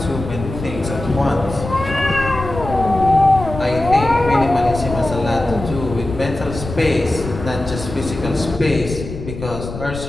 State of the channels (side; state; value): left; noise; rumble, 9 dB below the sound